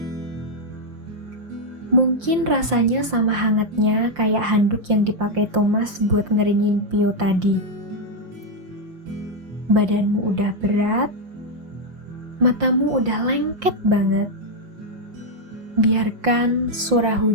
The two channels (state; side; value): late; left; 5.7 ms